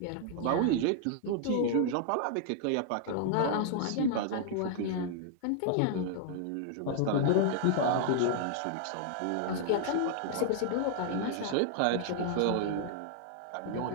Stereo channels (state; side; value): different; both; correlation 0.00